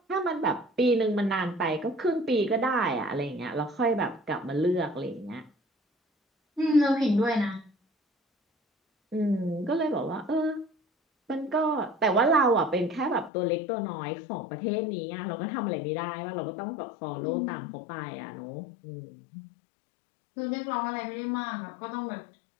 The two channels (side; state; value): right; drops out; at 13.3 s